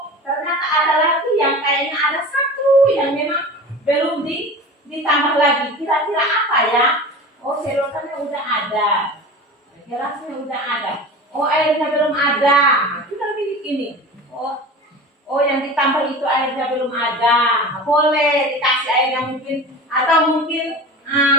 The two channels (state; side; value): normal; both; correlation 0.34